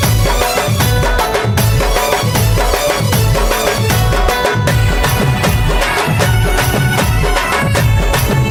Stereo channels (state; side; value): identical; both; correlation 1.00